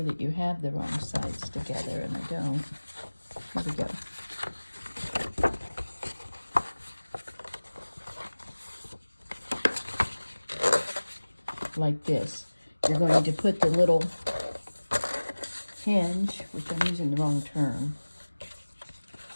that you have the wrong sides together, and I don't. Here we go. like this. You're going to put the little hinge, which I'm using the wrong term,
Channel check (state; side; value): inverted; both; correlation -1.00